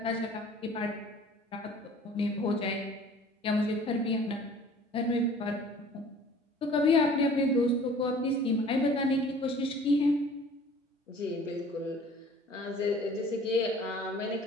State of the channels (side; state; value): both; normal; correlation 0.49